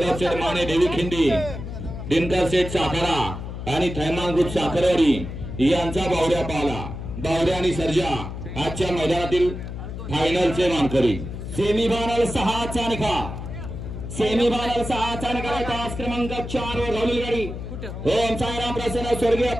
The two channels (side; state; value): left; noise; hum, 8 dB below the sound